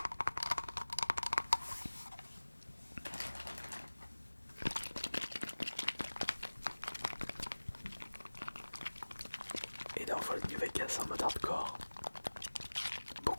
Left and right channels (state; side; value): inverted; both; correlation -1.00